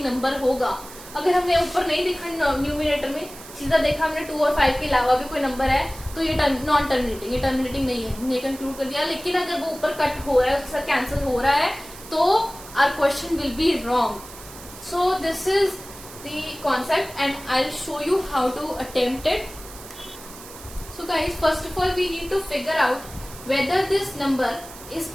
नंबर होगा। अगर हमने ऊपर नहीं देखा न्यूमरेटर में, सीधा देखा हमने 2 और 5 के अलावा भी कोई नंबर है तो ये नॉन टर्मिनेटिंग, ये टर्मिनेटिंग नहीं है, हमने कंक्लूड कर दिया। लेकिन अगर वो ऊपर कट हो रहा है, उसके साथ कैंसिल हो रहा है तो our question will be wrong. So this is the concept and I'll show you how to attempt it. So guys, first of all we need to figure out whether this number is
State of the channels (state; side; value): noise; right; hiss, 16 dB below the sound